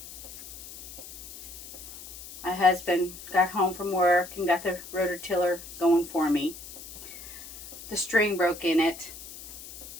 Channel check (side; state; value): left; noise; hiss, 14 dB below the sound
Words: My husband got home from work and got the rototiller going for me. The string broke in it.